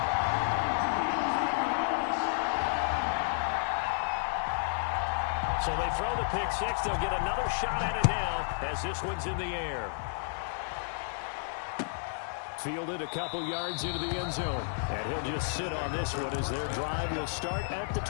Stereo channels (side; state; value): right; silent; digital silence